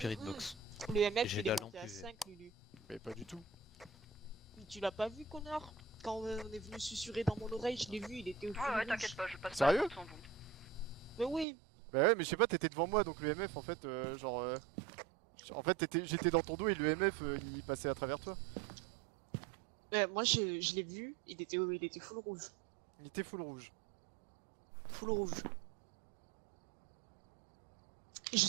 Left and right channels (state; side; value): drops out; left; at 11.5 s